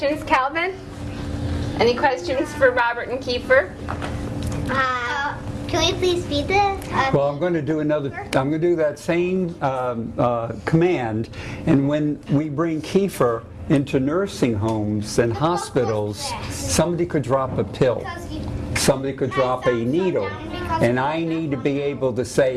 Calvin? Any questions for Robert and Kiefer? Can we please feed this? Well, I'm going to do that same command, and when we bring Kiefer into nursing homes and hospitals, somebody could drop a pill, somebody could drop a needle, and I need to be able to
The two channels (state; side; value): identical; both; correlation 1.00